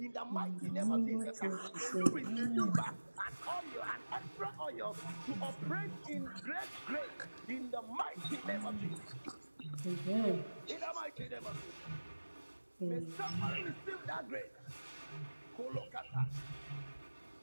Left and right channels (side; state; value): both; inverted; correlation -1.00